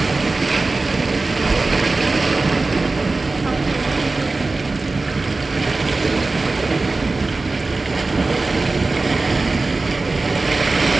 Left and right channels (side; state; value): left; quieter; 3.5 dB